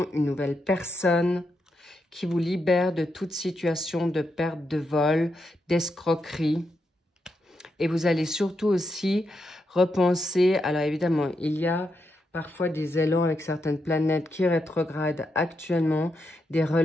une nouvelle personne qui vous libère de toute situation de perte de vol, d'escroquerie. Et vous allez surtout aussi repenser, alors évidemment, il y a parfois des élans avec certaines planètes qui rétrogradent actuellement, des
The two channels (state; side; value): normal; both; correlation 0.83